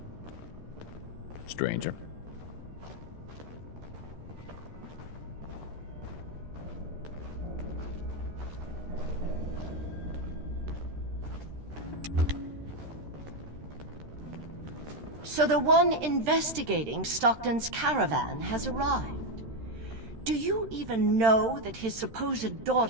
Stranger. So the one investigating Stockton's caravan has arrived. Do you even know that his supposed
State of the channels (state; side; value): late; left; 13 ms